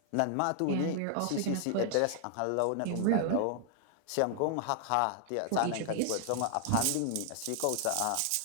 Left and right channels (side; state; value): both; different; correlation 0.00